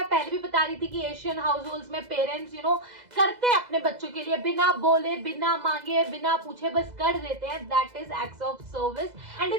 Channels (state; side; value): late; left; 2.0 ms